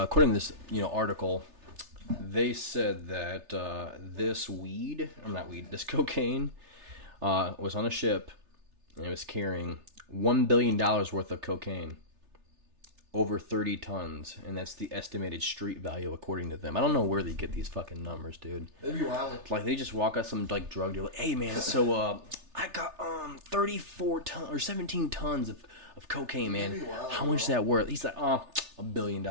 to this article, they said that this cocaine was on a ship and it was carrying $1 billion worth of cocaine, over 30 tons, and that's the estimated street value according to them. I don't know where they get these fucking numbers, dude. They'd be wild. Like they just walk out some like drug dealer, hey man, so I got 34 tons or 17 tons of cocaine, man. Wild, how much is that worth? He's like, $1 billion,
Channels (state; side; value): late; left; 3.3 ms